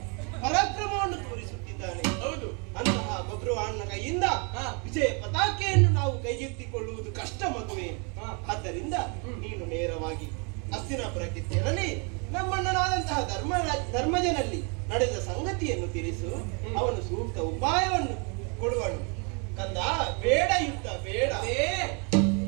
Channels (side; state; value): left; quieter; 35.2 dB